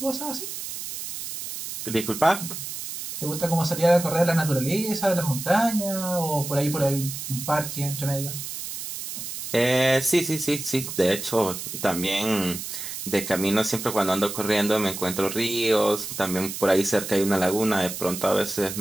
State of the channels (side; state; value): right; noise; hiss, 7 dB below the sound